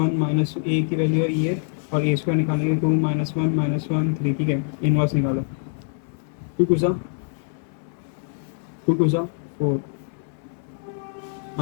minus A की वैल्यू है ये, और ए स्क्वायर निकालेंगे टू माइनस वन थ्री, ठीक है, इनवर्स निकालो, टू सा four,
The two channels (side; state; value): right; silent; 62 dB below the other